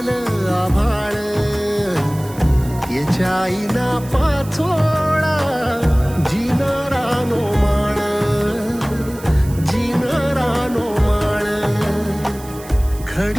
आभाळ, याच्या आईना पाचोळा जिनरानो माळ, जिनरानो माळ.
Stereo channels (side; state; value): right; noise; hiss, 19 dB below the sound